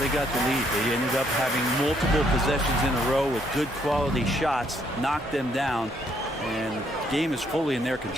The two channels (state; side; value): normal; both; correlation 0.70